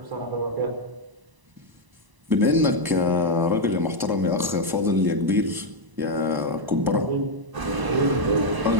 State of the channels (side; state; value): left; late; 1.0 ms